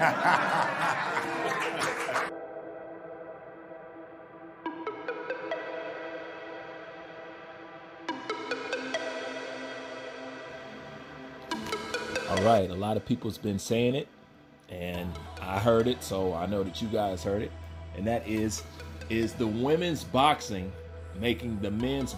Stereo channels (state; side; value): identical; both; correlation 1.00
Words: All right, a lot of people's been saying it, and I heard it, so I know that you guys heard it. And that is the women's boxing making the men's